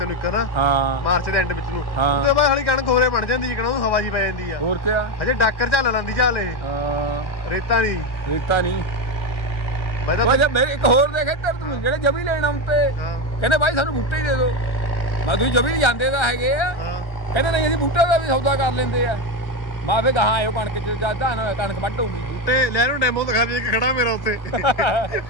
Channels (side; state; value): right; late; 1.5 ms